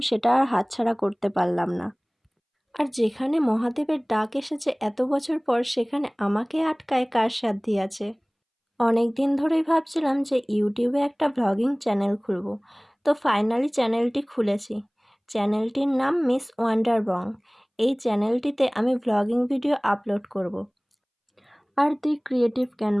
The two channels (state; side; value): identical; both; correlation 1.00